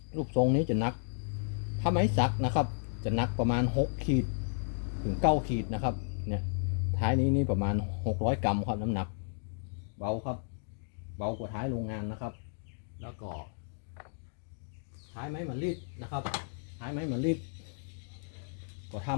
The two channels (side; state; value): right; silent; digital silence